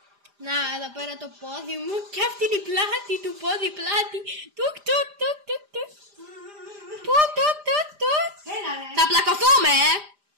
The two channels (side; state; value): left; late; 5.0 ms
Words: Να, εδώ πέρα το πόδι μου και αυτή είναι η πλάτη του πόδι, πλάτη. Τουκ, τουκ, τουκ, τουκ, τουκ. Τουκ, τουκ, τουκ, τουκ. Έλα ρε. Θα πλακωθούμε,